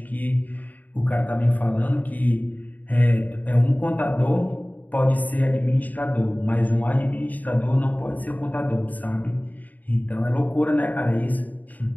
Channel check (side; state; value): right; late; 0.080 ms